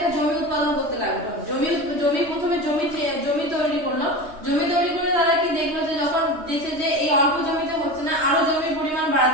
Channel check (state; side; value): late; left; 3.2 ms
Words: জমি উৎপাদন করতে লাগলো। প্রথমে জমি তৈরি করলো। জমি তৈরি করে তারা কি দেখলো যে যখন দেখছে যে এই অল্প জমিতে হচ্ছে না, আরো জমির পরিমাণ